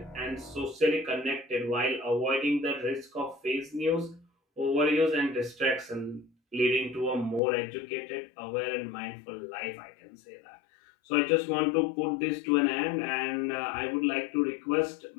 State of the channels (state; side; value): drops out; right; at 7.4 s